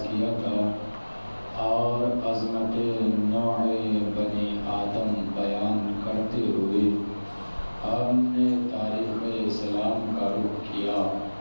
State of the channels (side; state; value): both; inverted; correlation -1.00